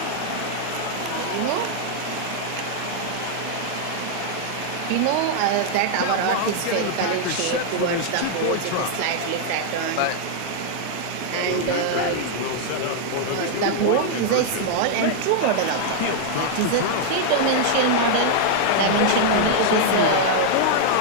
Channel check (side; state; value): both; different; correlation 0.00